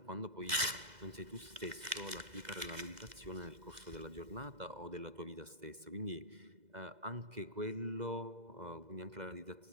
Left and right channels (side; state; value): left; late; 2.0 ms